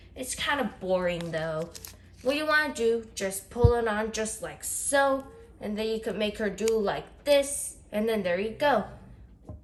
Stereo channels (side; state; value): both; identical; correlation 1.00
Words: It's kind of boring though. What you want to do, just pull it on just like so. And then you could make her do like this. And then there you go.